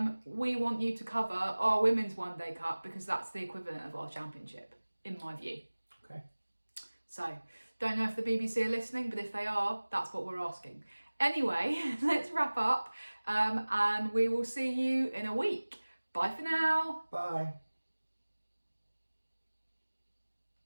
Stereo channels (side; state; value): both; inverted; correlation -1.00